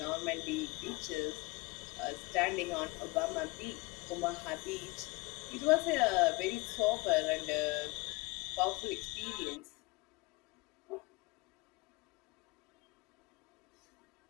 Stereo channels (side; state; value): right; quieter; 24.7 dB